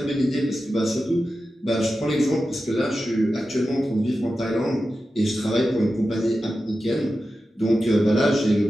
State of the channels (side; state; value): both; normal; correlation 0.92